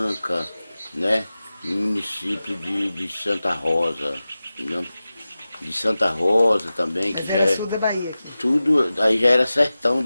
né? No município de Santa Rosa, entendeu? De Santa Rosa também, que mas já era é sul da Bahia aqui. tudo, aí já era sertão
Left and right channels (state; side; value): inverted; both; correlation -0.95